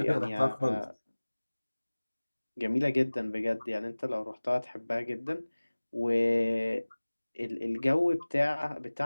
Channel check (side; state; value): both; inverted; correlation -1.00